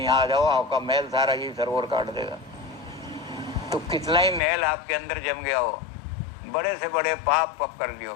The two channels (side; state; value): right; drops out; at 4.4 s